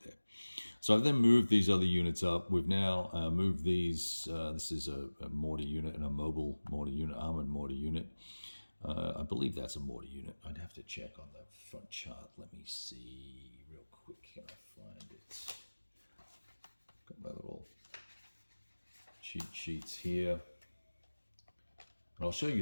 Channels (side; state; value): both; inverted; correlation -1.00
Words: So I've then moved these other units up. We've now moved these. This is a mortar unit and a mobile mortar unit, armored mortar unit. I believe that's a mortar unit. I'd have to check on the front chart. Let me see real quick. Can I find it? Got my little cheat sheets here. And I'll show